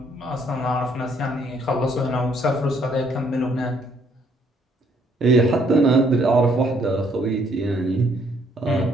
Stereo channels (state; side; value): normal; both; correlation 0.67